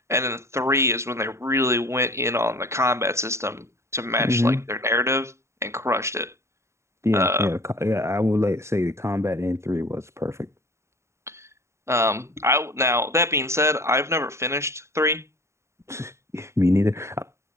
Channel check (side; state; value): left; late; 0.13 ms